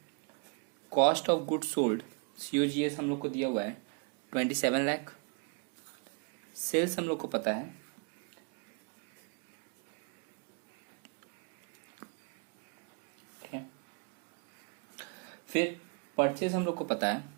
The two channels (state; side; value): quieter; left; 35.8 dB